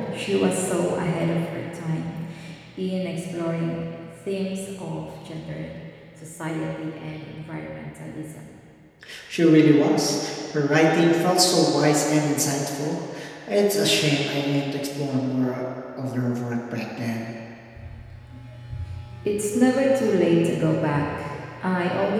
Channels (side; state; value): both; identical; correlation 1.00